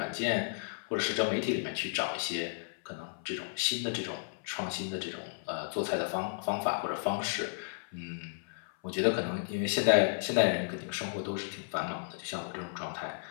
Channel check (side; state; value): right; silent; 55 dB below the other